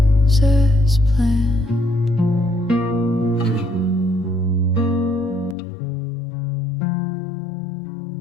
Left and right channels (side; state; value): right; drops out; at 5.6 s